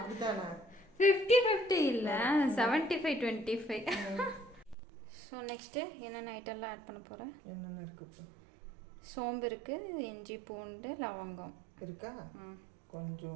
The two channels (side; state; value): left; drops out; at 4.8 s